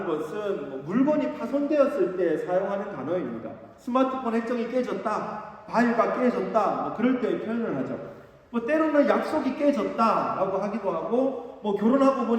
것은 물건이 파손되었을 때 사용하는 단어입니다. 스마트폰 액정이 깨졌다, 바위가 깨졌다, 그럴 때 표현을 하죠. 때로는 약속이 깨졌다라고 하기도 하고, 결혼하고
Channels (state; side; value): identical; both; correlation 1.00